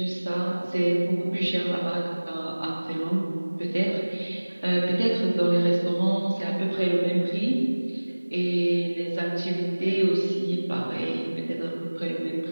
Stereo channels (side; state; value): both; inverted; correlation -1.00